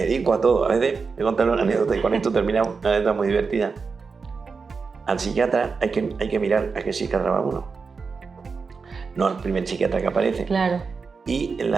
dedico a todo. A veces me contan una anécdota y con esto terminamos, una anécdota muy divertida. Al psiquiatra hay que mirar a qué psiquiatra va uno. No al primer psiquiatra que aparece. Claro. Y a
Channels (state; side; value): quieter; left; 5.0 dB